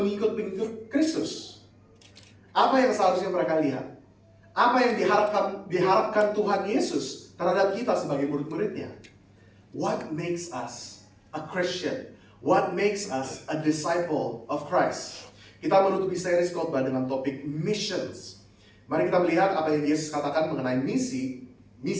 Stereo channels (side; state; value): both; identical; correlation 1.00